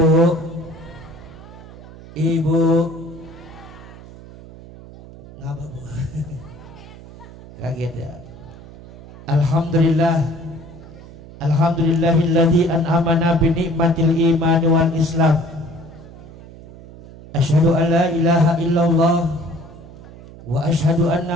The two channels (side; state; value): right; noise; hum, 18 dB below the sound